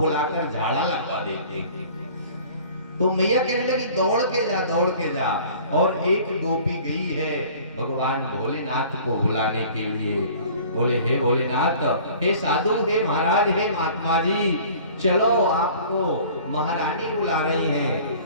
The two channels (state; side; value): inverted; both; correlation -0.48